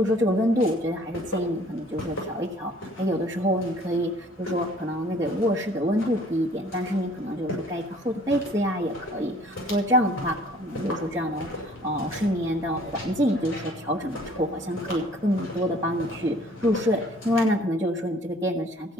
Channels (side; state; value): both; normal; correlation 0.54